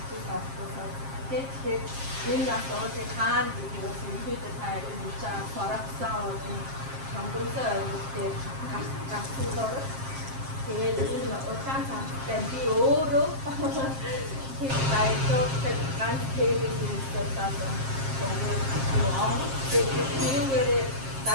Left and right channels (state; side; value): late; left; 7.5 ms